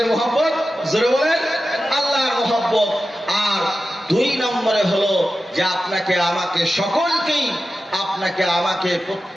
মহব্বত? জোরে বলেন, আল্লাহর মহব্বত। আর দুই নম্বরে হলো যে আপনাকে আমাকে সকলকেই, আপনাকে আমাকে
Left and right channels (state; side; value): normal; both; correlation 0.93